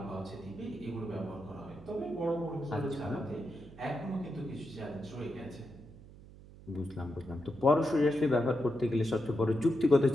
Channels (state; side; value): noise; right; hum, 19 dB below the sound